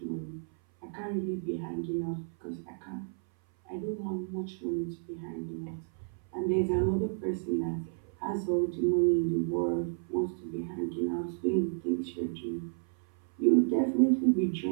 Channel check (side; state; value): left; silent; 57 dB below the other